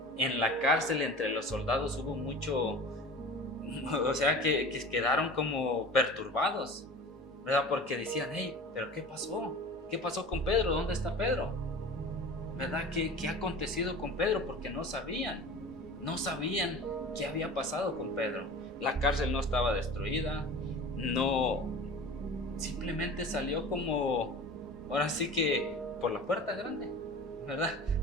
en la cárcel entre los soldados hubo mucho, o sea, que quedaron como perturbados, ¿verdad? Porque decían, hey, ¿pero qué pasó? ¿Qué pasó con Pedro? ¿Dónde está Pedro? ¿Verdad? ¿Qué ha acontecido con Pedro? Porque no sabían ¿qué había pasado con Pedro? La cárcel no estaba destruida, no, simplemente salió como, ahora sí que por la puerta grande, ¿verdad?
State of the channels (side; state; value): both; normal; correlation 0.37